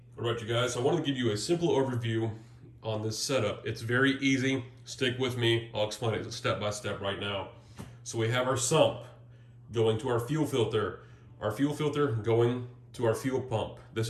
Alright you guys, so I want to give you a simple overview on this setup. It's very easy, stick with me, I'll explain it step by step right now. So we have our sump going to our fuel filter going to our fuel pump.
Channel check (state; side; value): identical; both; correlation 1.00